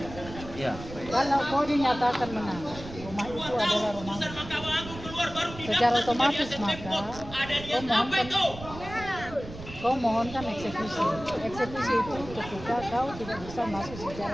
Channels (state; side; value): noise; right; rumble, 13 dB below the sound